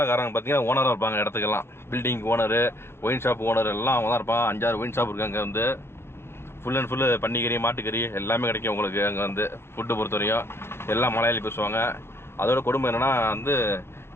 பார்த்தீங்கன்னா ஓனராக இருப்பாங்க. இடத்துக்கெல்லாம் building owner, wine shop owner எல்லாம் அவங்க தான் இருப்பாங்க. 5-6 ஒயின் ஷாப் இருக்குது. அங்கே வந்து ஃபுல் அண்ட் ஃபுல்லு பன்னிக்கறி மாட்டுக்கறி எல்லாமே கிடைக்கும் உங்களுக்கு. அங்கே வந்து ஃபுட்டு பொறுத்தவரையும் எல்லாம் மலையாளி பேசுவாங்க. அதோட கொடுமை என்னென்னா வந்து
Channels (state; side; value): late; right; 0.12 ms